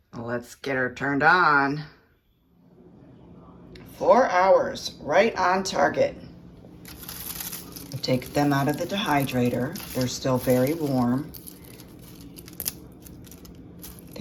Let's get her turned on. 4 hours, right on target. Take them out of the dehydrator. They're still very warm.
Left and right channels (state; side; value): identical; both; correlation 1.00